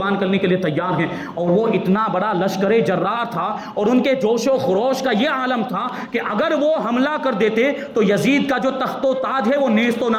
کرنے کے لیے تیار ہیں۔ اور وہ اتنا بڑا لشکر جرار تھا اور ان کے جوش و خروش کا یہ عالم تھا کہ اگر وہ حملہ کر دیتے تو یزید کا جو تخت و تاج ہے وہ نیست و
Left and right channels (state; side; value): identical; both; correlation 1.00